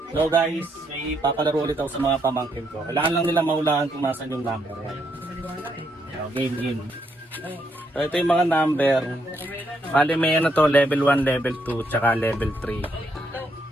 So guys, may papalaro ulit ako sa mga pamangkin ko. Kailangan lang nila mahulaan kung nasan yung number. So, game. So ito yung mga number. Bali may ano to, level 1, level 2, tsaka level 3.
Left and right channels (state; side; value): normal; both; correlation 0.76